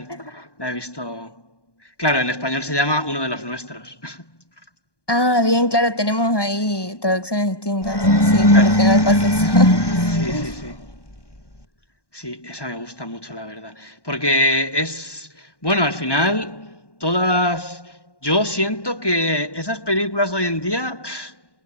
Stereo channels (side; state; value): right; late; 1.2 ms